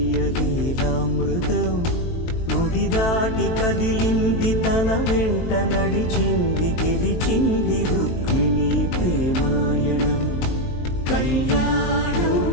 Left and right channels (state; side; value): late; right; 23 ms